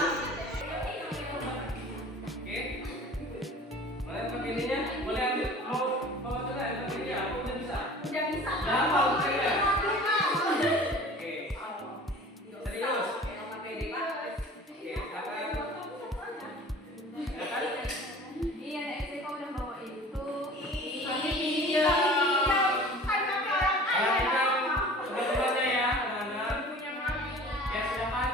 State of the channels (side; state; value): both; normal; correlation 0.43